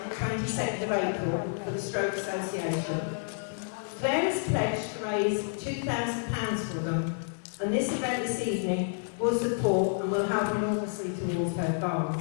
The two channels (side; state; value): right; silent; 58 dB below the other